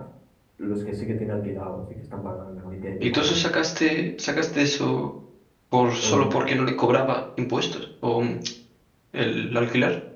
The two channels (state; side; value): identical; both; correlation 1.00